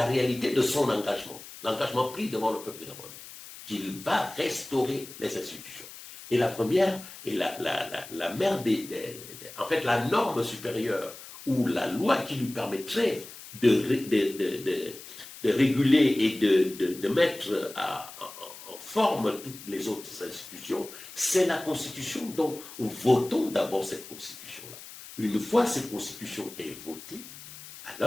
réalité de son engagement, l'engagement pris devant le peuple gabonais, qu'il va restaurer les institutions. Et la première, et la mère en fait, la norme supérieure, ou la loi qui lui permettrait de réguler et de mettre forme toutes les autres institutions, c'est la Constitution. Donc, votons d'abord cette Constitution-là. Une fois cette Constitution est votée,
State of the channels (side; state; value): left; noise; hiss, 15 dB below the sound